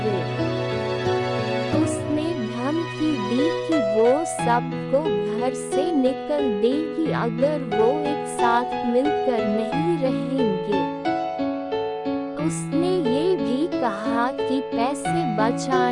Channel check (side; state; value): both; identical; correlation 1.00